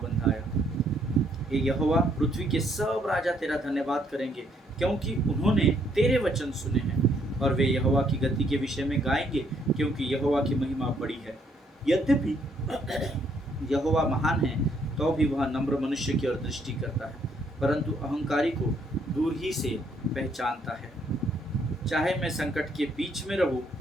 बंधाया। हे यहोवा, पृथ्वी के सब राजा तेरा धन्यवाद करेंगे, क्योंकि उन्होंने तेरे वचन सुने हैं। और वे यहोवा की गति के विषय में गाएंगे, क्योंकि यहोवा की महिमा बड़ी है। यद्यपि यहोवा महान है तो भी वह नम्र मनुष्य की ओर दृष्टि करता है, परंतु अहंकारी को दूर ही से पहचानता है। चाहे मैं संकट के बीच में रहूं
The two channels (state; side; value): normal; both; correlation 0.69